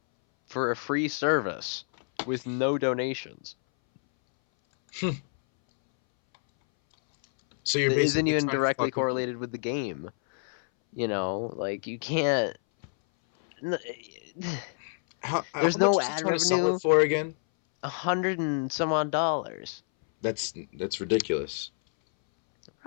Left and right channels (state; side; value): silent; right; 59 dB below the other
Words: for a free service with no donations. So you're That isn't basically even trying to directly fuck with me. correlated with the game. You know, like you can't. How There's much no is he ad trying to sell it revenue. for again? 100 and some odd dollars. That's ridiculous.